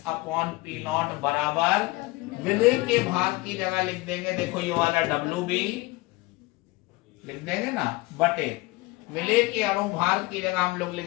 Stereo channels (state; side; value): quieter; right; 22.0 dB